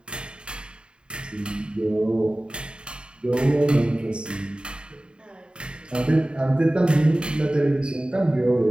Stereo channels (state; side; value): late; left; 0.051 ms